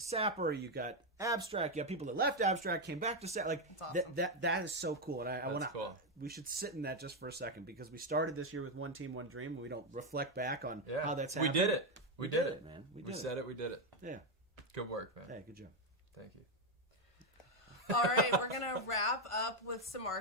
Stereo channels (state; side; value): normal; both; correlation 0.05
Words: you got Abstract, you have people that left Abstract, came back to Sapper. Like, awesome. that is so cool. And I want to... cool. We should sit in that just for a second because we started this year with One Team, One Dream, and we don't reflect back on how that's happened. We did it. We did it, man. We said it. We did it. Yeah. Good work, man. Hey, good job. Thank you. All right, we're going to wrap up with some